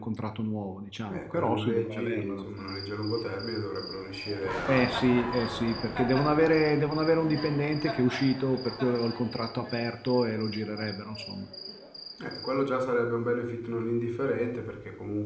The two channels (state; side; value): identical; both; correlation 1.00